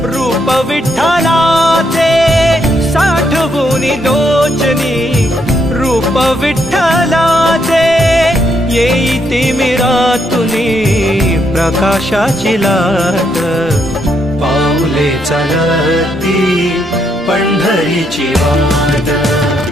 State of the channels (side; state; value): both; normal; correlation 0.76